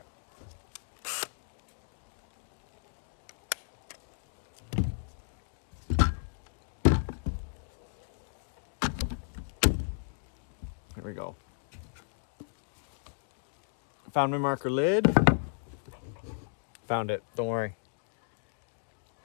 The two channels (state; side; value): silent; right; digital silence